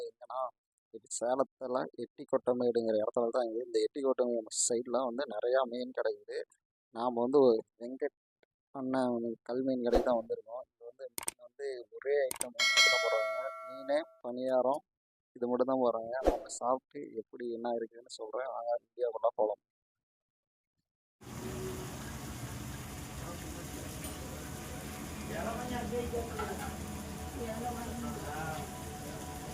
எங்கன்னா இது சேலத்தில் எட்டிக்கொட்டமேடுங்கிற இடத்துல தான் இருக்குது. இந்த எட்டிக்கொட்டமேடு சைடில் வந்து நிறையா மீன் கிடைக்குது. நாம் வந்து வெங்கட் அண்ணன் கல்மீன் கடைக்கு தான் வந்திருக்கோம். இது வந்து மீன் வந்து ஒரே ஐட்டம் மட்டும் தான் போடுறாங்க. மீன் பணியாரம் இது மட்டும் தான் போடுறாங்க. நம்ம சாப்பிட்டு எப்படி என்ன இருக்குதுன்னு சொல்கிறேன். நாங்கள் வீடியோக்குள்ளே போகலாம்.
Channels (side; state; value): both; identical; correlation 1.00